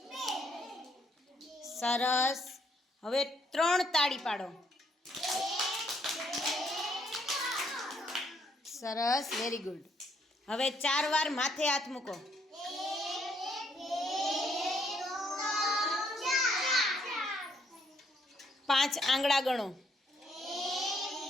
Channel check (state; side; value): normal; both; correlation 0.70